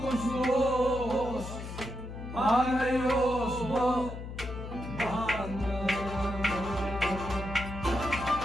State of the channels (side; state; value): left; noise; hum, 9 dB below the sound